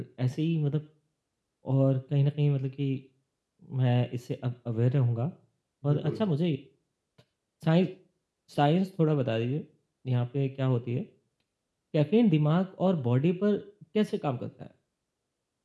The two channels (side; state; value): both; identical; correlation 1.00